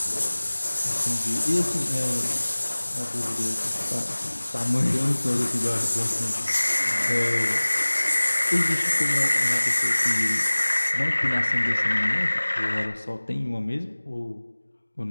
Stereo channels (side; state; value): both; inverted; correlation -1.00